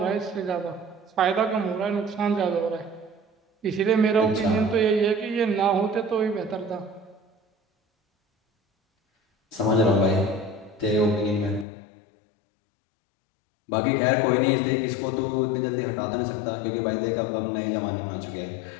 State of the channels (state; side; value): drops out; right; at 11.7 s